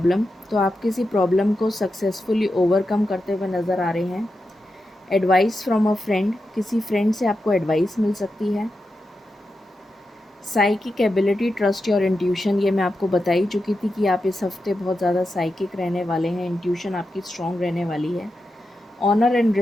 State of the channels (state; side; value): normal; both; correlation 0.89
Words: तो आप किसी प्रॉब्लम को सक्सेसफुली ओवरकम करते हुए नज़र आ रहे हैं। एडवाइस फ्रॉम अ फ्रेंड, किसी फ्रेंड से आपको एडवाइस मिल सकती है। Psychic ability, trust your intuition, ये मैं आपको बता ही चुकी थी कि आप इस हफ्ते बहुत ज़्यादा साइकिक रहने वाले हैं। इंट्यूशन आपकी स्ट्रॉन्ग रहने वाली है। ऑनर एंड